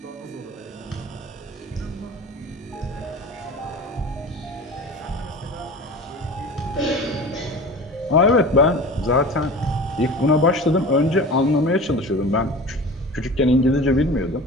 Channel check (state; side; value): normal; both; correlation 0.36